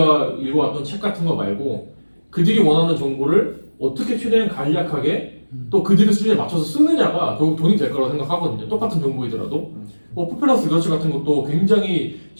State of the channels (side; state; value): both; inverted; correlation -1.00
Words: 읽어왔던 책 같은 거 말고 그들이 원하는 정보를 어떻게 최대한 간략하게 또 그들의 수준에 맞춰서 쓰느냐가 결국 돈이 될 거라고 생각하거든요. 똑같은 정보이더라도 포퓰러스 리서치 같은 것도 굉장히